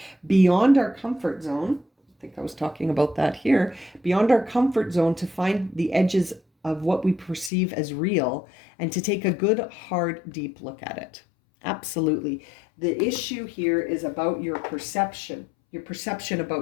beyond our comfort zone. I think I was talking about that here. Beyond our comfort zone to find the edges of what we perceive as real and to take a good, hard, deep look at it. Absolutely. The issue here is about your perception. Your perception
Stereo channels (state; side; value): drops out; right; at 7.5 s